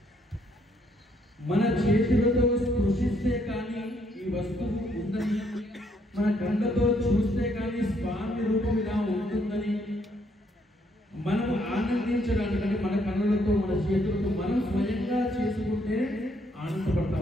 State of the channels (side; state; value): both; normal; correlation 0.71